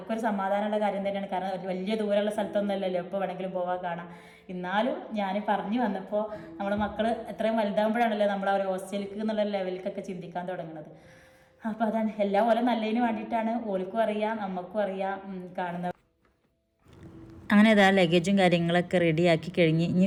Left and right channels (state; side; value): identical; both; correlation 1.00